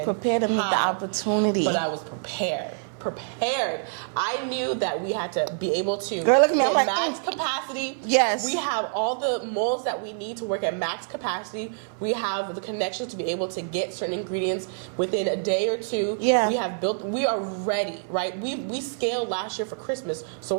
Prepared to meet the opportunity. But I was prepared. I knew that we had to be able to hit max capacity. We have all the molds that we need to work at max capacity. We have the connections to be able to get certain ingredients within a day or two. We are ready, right? We scaled last year for Christmas, so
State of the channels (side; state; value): left; silent; 57 dB below the other